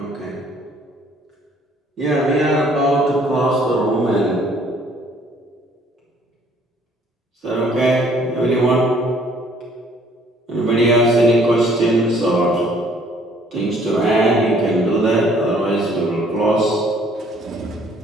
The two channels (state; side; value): normal; both; correlation 0.60